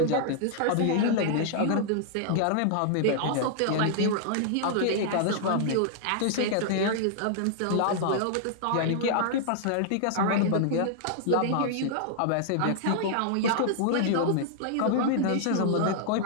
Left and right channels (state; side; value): different; both; correlation -0.01